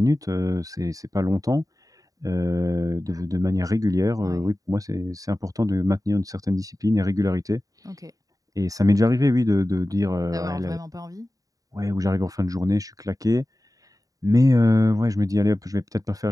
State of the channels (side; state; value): left; late; 0.17 ms